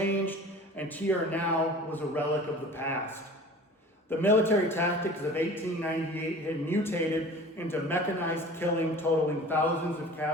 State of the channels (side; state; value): both; normal; correlation 0.42